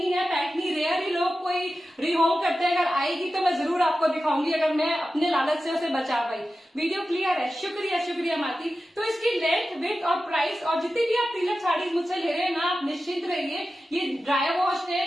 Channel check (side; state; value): both; normal; correlation 0.93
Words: है, पैठनी रेयर ही लोग कोई रिहोम करते हैं, अगर आएगी तो मैं जरूर आपको दिखाऊंगी, अगर मैं अपने लालच से उसे बचा पाई। वीडियो क्लियर है, शुक्रिया शुक्रिया माती। तो इसकी लेंथ, विड्थ और प्राइस और जितनी भी आप प्रीलक साड़ीज मुझसे ले रहे हैं ना, आप निश्चिंत रहिए, ये ड्राई वॉश है,